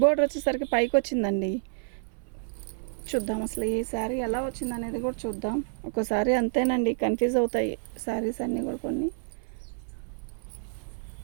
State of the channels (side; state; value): left; silent; 59 dB below the other